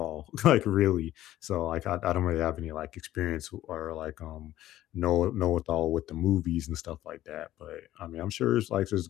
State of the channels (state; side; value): quieter; right; 14.1 dB